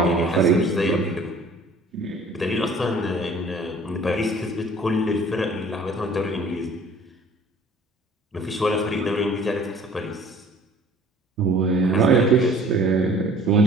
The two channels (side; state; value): both; normal; correlation 0.51